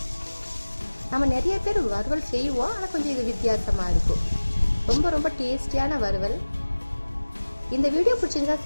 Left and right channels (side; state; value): both; inverted; correlation -1.00